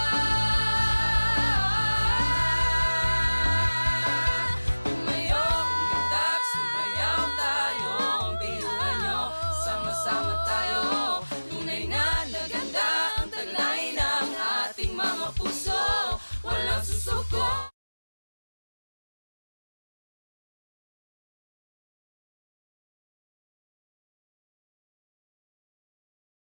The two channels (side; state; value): both; inverted; correlation -1.00